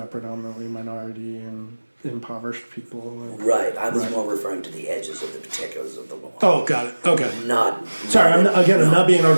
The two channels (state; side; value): inverted; both; correlation -1.00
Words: predominantly minority and impoverished people? Right, I was more referring to the edges of the particulars of the law. Oh, got it. Okay. Sorry, I'm not being